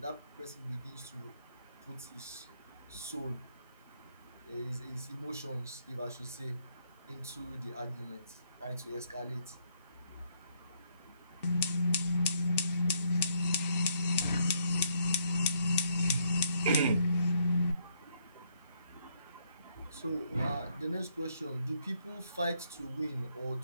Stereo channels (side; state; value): both; inverted; correlation -0.70